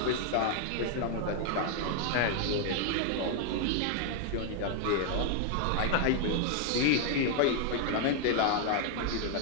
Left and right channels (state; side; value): different; both; correlation 0.00